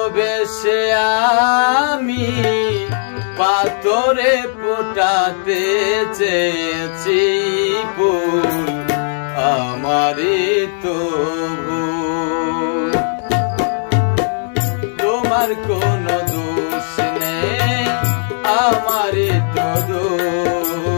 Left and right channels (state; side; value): silent; right; digital silence